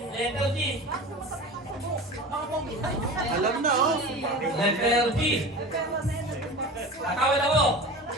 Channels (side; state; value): both; normal; correlation 0.33